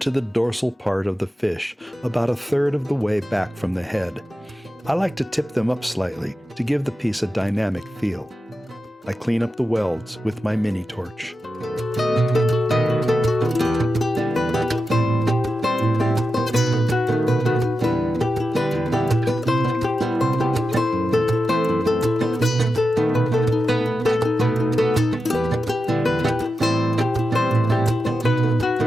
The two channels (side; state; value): both; normal; correlation 0.91